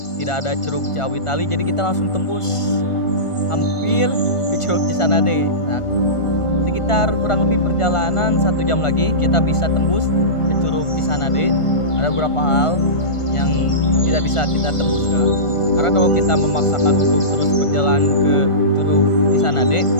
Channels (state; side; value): late; right; 1.4 ms